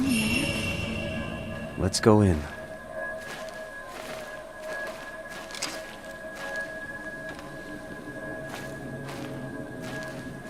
there? Let's go in.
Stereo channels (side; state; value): both; identical; correlation 1.00